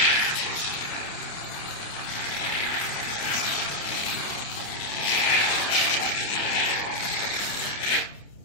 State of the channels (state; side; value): late; right; 29 ms